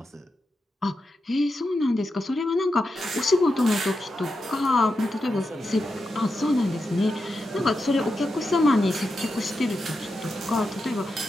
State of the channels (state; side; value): normal; both; correlation 0.88